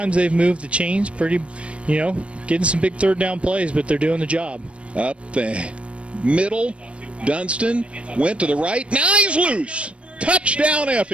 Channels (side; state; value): left; late; 0.061 ms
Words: they've moved the chains. Pretty, getting some big 3rd down plays, but they're doing the job. Up the middle, Dunston went to the right. Now he's loose. Touchdown,